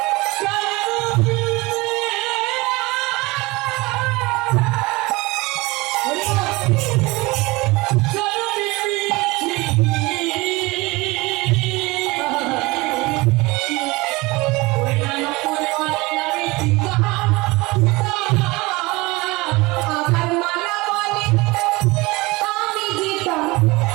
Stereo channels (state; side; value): quieter; left; 22.9 dB